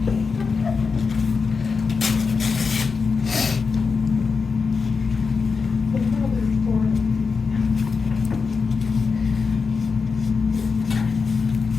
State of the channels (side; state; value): right; quieter; 5.0 dB